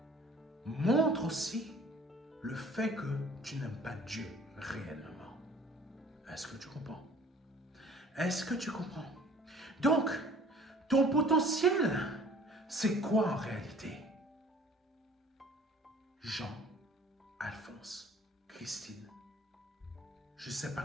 montrent aussi le fait que tu n'aimes pas Dieu réellement. Est-ce que tu comprends? Est-ce que tu comprends? Donc, ton potentiel, c'est quoi en réalité? Jean, Alphonse, Christine, je ne sais pas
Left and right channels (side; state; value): both; normal; correlation 0.51